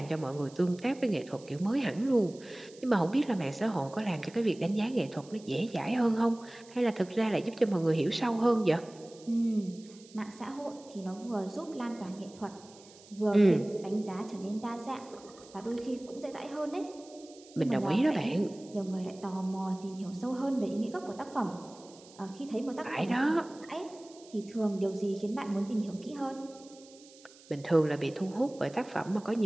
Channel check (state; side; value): noise; right; hiss, 23 dB below the sound